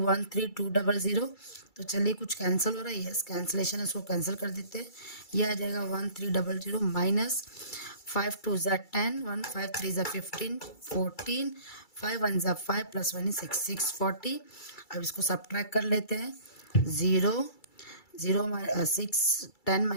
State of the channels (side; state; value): right; late; 2.3 ms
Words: तो चलिए कुछ कैंसिल हो रहा है, यस कैंसिलेशन है, इसको कैंसिल कर देते हैं. ये आ जाएगा 1300 माइनस 5 2 10 1 5 3 15 14 5 1 5 प्लस 1 6 640. अब इसको सब्ट्रैक्ट कर लेते हैं. 0 6 10